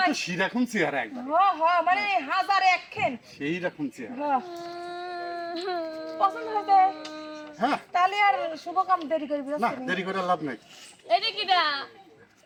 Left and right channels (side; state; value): both; identical; correlation 1.00